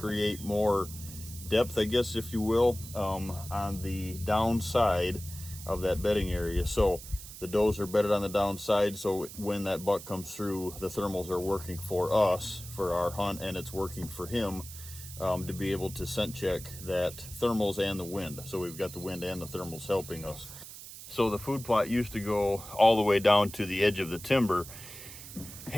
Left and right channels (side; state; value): right; noise; hiss, 14 dB below the sound